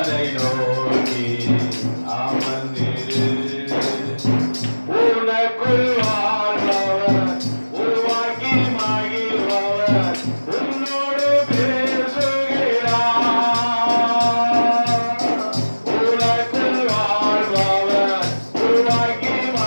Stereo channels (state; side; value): inverted; both; correlation -1.00